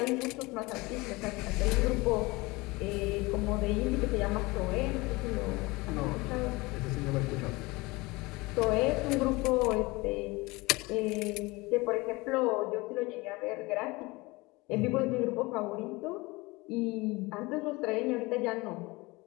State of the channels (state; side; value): quieter; right; 23.3 dB